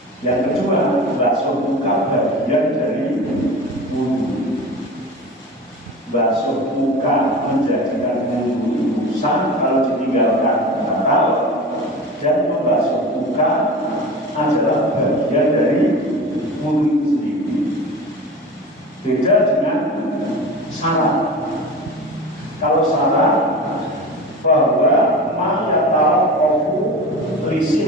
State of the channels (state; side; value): normal; both; correlation 0.32